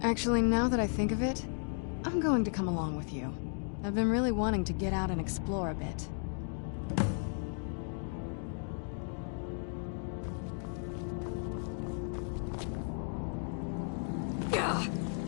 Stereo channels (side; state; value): right; silent; 55 dB below the other